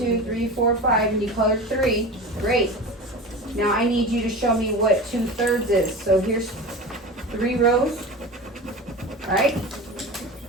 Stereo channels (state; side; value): normal; both; correlation 0.30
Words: 3, 4, 5, and you colored 3. Great. Now I need you to show me what 2/3 is. So here's 3 rows, right?